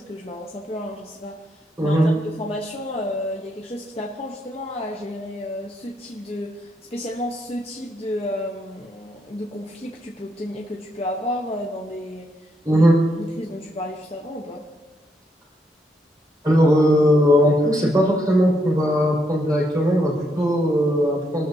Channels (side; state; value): both; normal; correlation 0.77